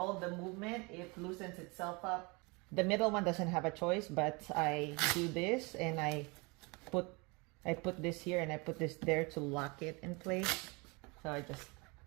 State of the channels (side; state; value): left; quieter; 28.1 dB